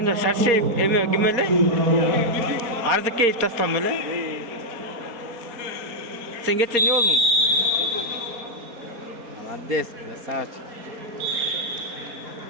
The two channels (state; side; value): late; left; 4.2 ms